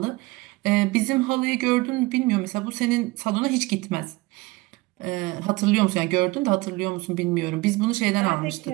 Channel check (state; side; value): quieter; left; 22.0 dB